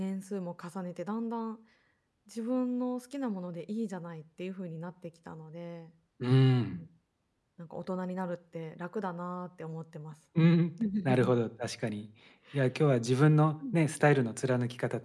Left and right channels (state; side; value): identical; both; correlation 1.00